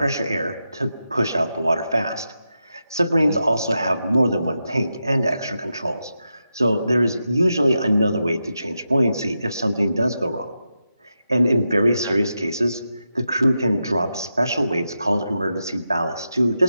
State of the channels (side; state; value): both; inverted; correlation -0.88